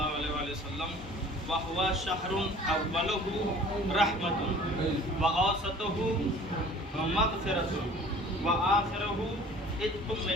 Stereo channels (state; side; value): normal; both; correlation 0.48